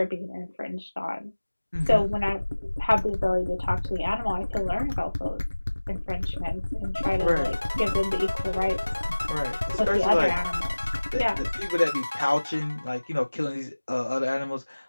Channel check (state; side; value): inverted; both; correlation -1.00